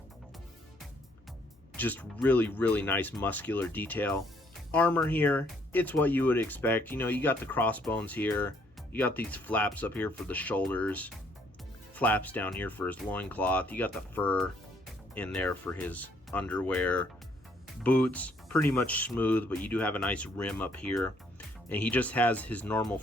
Just really, really nice muscular detail. Armor here, it's what you would expect. You got the crossbones here, you got these flaps up here for the shoulders, flaps down here for his loincloth, you got the fur in there for his underwear. Boots, pretty much smooth, but you do have a nice rim up here. And he just has his normal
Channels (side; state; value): both; normal; correlation 0.66